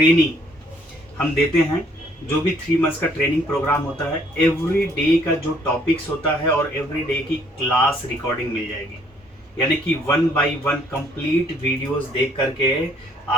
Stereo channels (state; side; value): normal; both; correlation 0.63